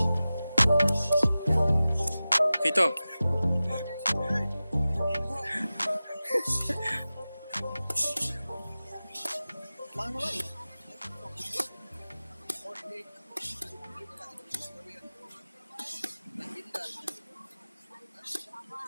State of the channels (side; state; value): both; inverted; correlation -0.96